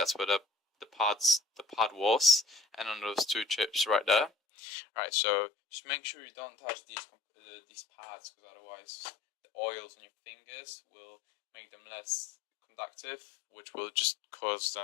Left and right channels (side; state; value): right; drops out; at 4.3 s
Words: where the pad was, and on those two chips right there. Right, so just make sure you don't touch these pads, because otherwise the oils on your fingers will make them less conductive, which will just cause